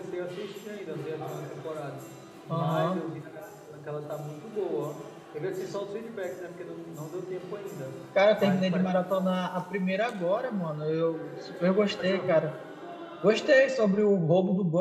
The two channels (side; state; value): both; identical; correlation 1.00